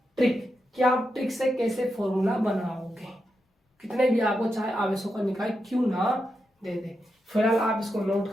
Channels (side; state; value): both; normal; correlation 0.86